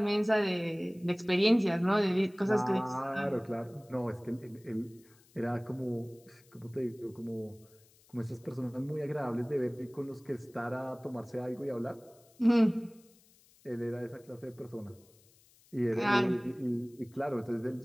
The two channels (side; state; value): left; noise; hiss, 29 dB below the sound